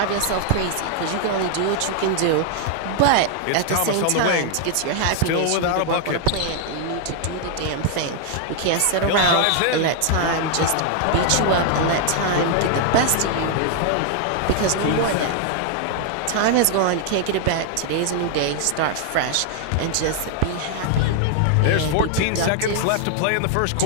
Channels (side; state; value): both; different; correlation 0.00